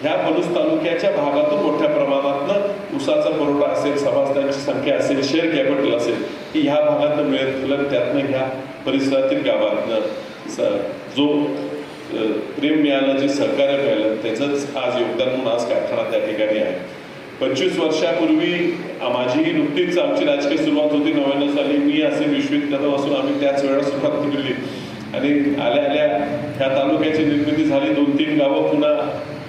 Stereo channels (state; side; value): identical; both; correlation 1.00